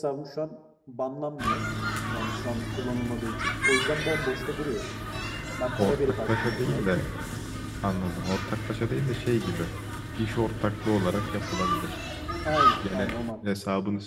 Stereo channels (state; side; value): identical; both; correlation 1.00